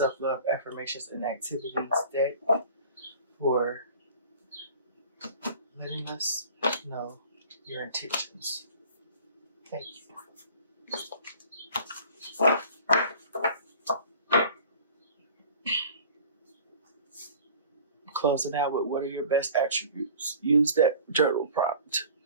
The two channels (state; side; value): inverted; both; correlation -0.46